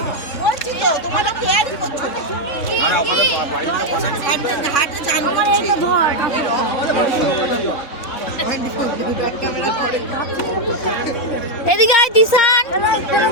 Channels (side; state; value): right; late; 3.7 ms